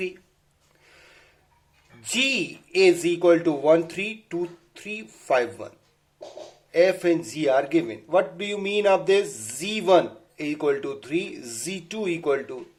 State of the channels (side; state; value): both; identical; correlation 1.00